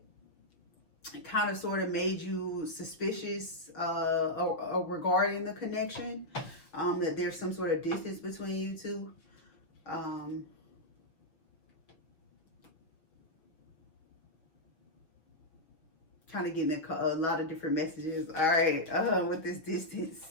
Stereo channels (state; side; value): late; right; 6.2 ms